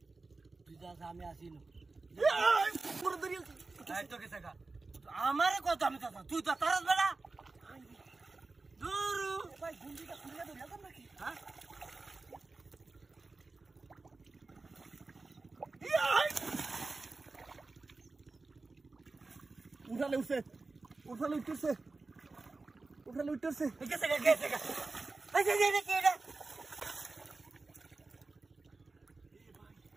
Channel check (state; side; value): quieter; left; 3.6 dB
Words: তুই যা আমি আসিনি পুরো দরিয়া এই তো কেসে কা আমারে কত আমি চাচা তুই তো তারাস বেলা দূরু ভাই গুন্ডিটা খুলে ধরে আলাম নাকি হ্যাঁ উঠালে উঠছে উঠালে উঠতেছে উঠালে উঠতেছে কেসে কা এই যে কি রে